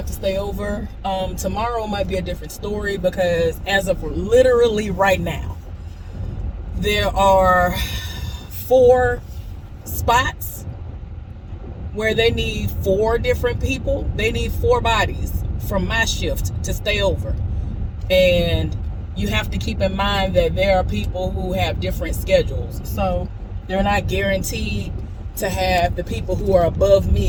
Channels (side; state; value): both; identical; correlation 1.00